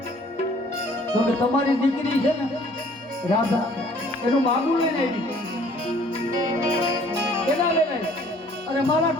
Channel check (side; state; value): both; normal; correlation 0.56